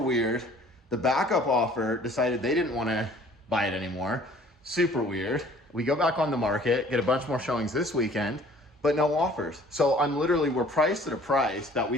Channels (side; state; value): both; normal; correlation 0.53